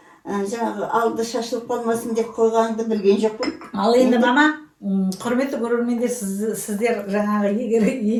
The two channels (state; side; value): identical; both; correlation 1.00